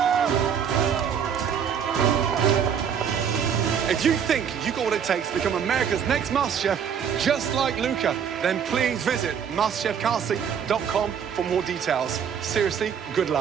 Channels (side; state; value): left; quieter; 7.7 dB